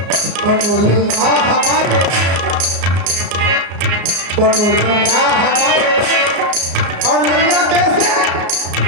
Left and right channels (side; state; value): left; late; 34 ms